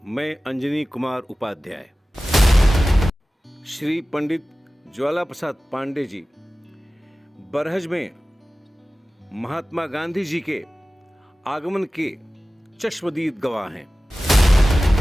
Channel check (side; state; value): both; normal; correlation 0.96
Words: मैं अंजनी कुमार उपाध्याय। श्री पंडित ज्वाला प्रसाद पांडे जी बरहज में महात्मा गांधी जी के आगमन के चश्मदीद गवाह हैं।